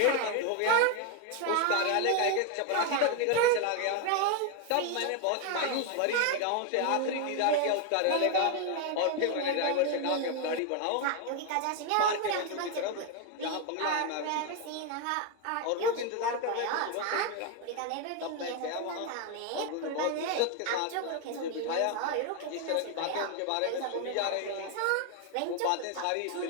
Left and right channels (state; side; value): different; both; correlation 0.01